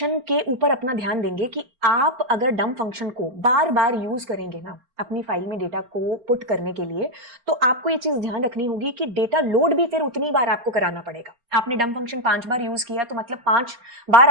के ऊपर अपना ध्यान देंगे कि आप अगर डंप फंक्शन को बार बार यूज करेंगे ना अपनी फाइल में डेटा को पुट करने के लिए, तो आपको ये चीज ध्यान रखनी होगी कि डेटा लोड भी फिर उतनी बार आपको कराना पड़ेगा। आपने डंप फंक्शन 5 बार यूज किया तो मतलब 5 बार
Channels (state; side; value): late; left; 4.3 ms